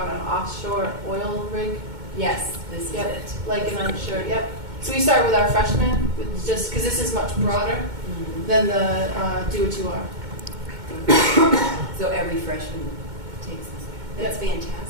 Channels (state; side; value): late; left; 2.2 ms